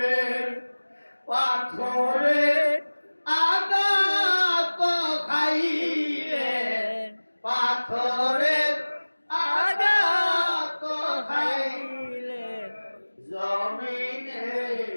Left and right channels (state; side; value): inverted; both; correlation -1.00